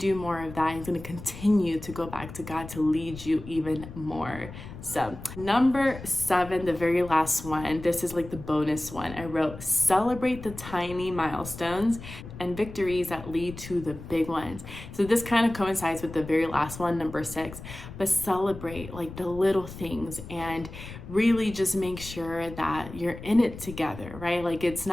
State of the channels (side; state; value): left; noise; rumble, 13 dB below the sound